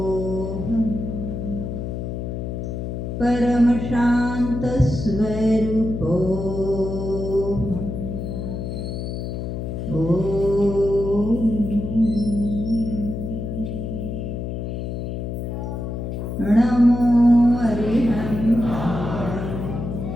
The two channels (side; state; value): left; noise; hum, 5 dB below the sound